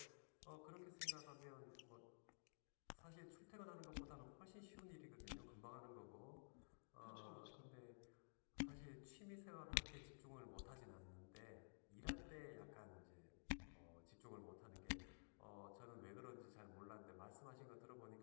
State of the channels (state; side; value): silent; right; digital silence